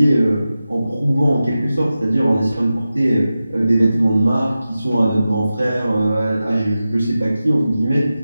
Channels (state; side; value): inverted; both; correlation -0.93